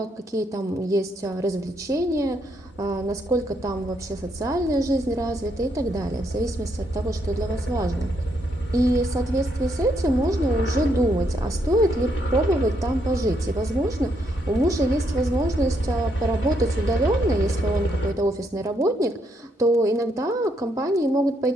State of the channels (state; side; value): normal; both; correlation 0.75